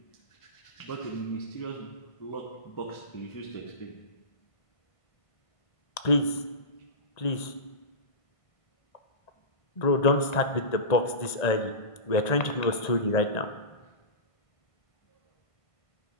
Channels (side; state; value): right; late; 1.5 ms